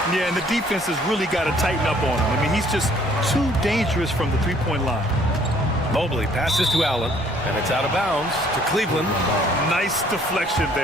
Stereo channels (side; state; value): both; normal; correlation 0.60